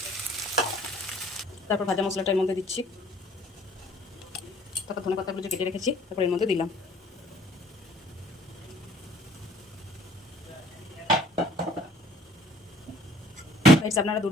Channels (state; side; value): normal; both; correlation 0.55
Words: তারপর ভাজা মশলাটা এর মধ্যে দিচ্ছি। তারপর ধনেপাতাগুলো যে কেটে রেখেছি তারপর এর মধ্যে দিলাম। আপনারা